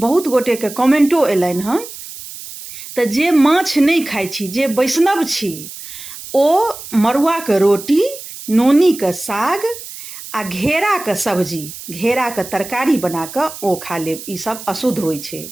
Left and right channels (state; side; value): noise; right; hiss, 13 dB below the sound